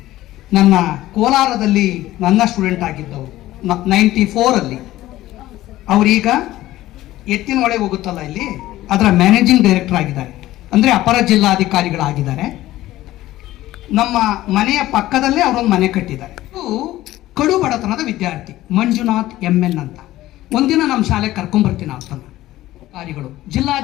ನನ್ನ ಕೋಲಾರದಲ್ಲಿ ನನ್ನ ಸ್ಟೂಡೆಂಟ್ ಆಗಿದ್ದವರು 94ಅಲ್ಲಿ ಅವರೀಗ ಎತ್ತಿನಹೊಳೆ ಹೋಗುತ್ತಲ್ಲ ಇಲ್ಲಿ ಅದರ ಮ್ಯಾನೇಜಿಂಗ್ ಡೈರೆಕ್ಟರ್ ಆಗಿದ್ದಾರೆ, ಅಂದರೆ ಅಪರ ಜಿಲ್ಲಾಧಿಕಾರಿಗಳಾಗಿದ್ದಾರೆ. ನಮ್ಮ ಮನೆಯ ಪಕ್ಕದಲ್ಲೇ ಅವರೊಂದು ಮನೆ ಕಟ್ಟಿದ್ದಾರೆ. ಕಡು ಬಡತನದ ವಿದ್ಯಾರ್ಥಿ ಮಂಜುನಾಥ್ MN ಅಂತ. ಒಂದಿನ ನಮ್ಮ ಶಾಲೆಗೆ ಕರ್ಕೊಂಡ್ಬರ್ತೀನಿ ಅಂತನ ಅಧಿಕಾರಿಗಳು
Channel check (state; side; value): quieter; right; 15.6 dB